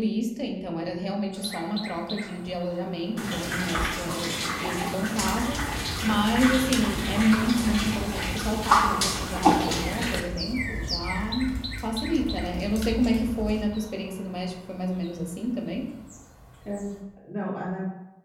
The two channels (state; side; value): identical; both; correlation 1.00